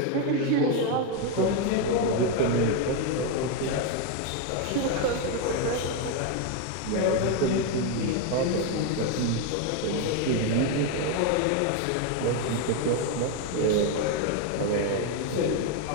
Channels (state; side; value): different; both; correlation 0.01